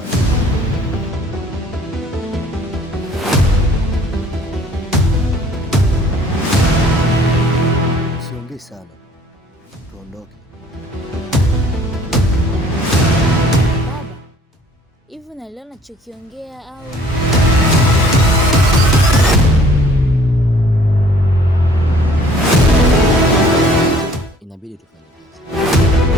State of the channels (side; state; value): both; normal; correlation 0.56